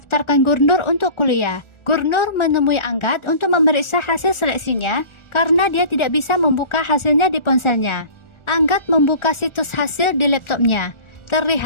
Gurnur untuk kuliah. Gurnur menemui Anggat untuk memeriksa hasil seleksinya karena dia tidak bisa membuka hasilnya di ponselnya. Anggat membuka situs hasil di laptopnya.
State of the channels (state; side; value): late; right; 1.4 ms